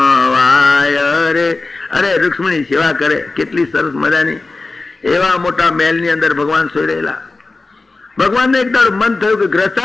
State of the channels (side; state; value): right; quieter; 3.5 dB